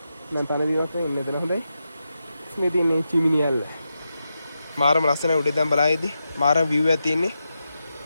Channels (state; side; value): inverted; both; correlation -0.88